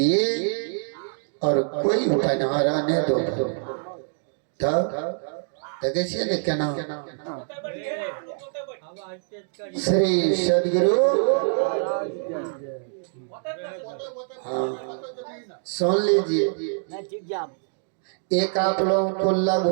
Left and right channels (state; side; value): silent; left; digital silence